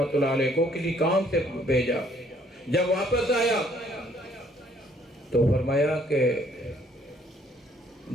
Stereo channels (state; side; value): normal; both; correlation 0.63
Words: اللہ علیہ کو کسی کام سے بھیجا، جب واپس آیا تو فرمایا کہ